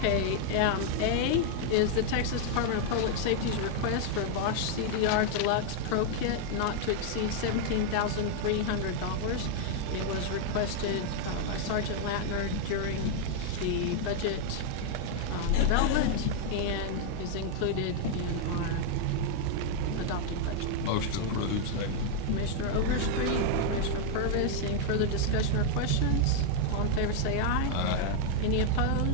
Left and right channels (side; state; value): both; different; correlation 0.00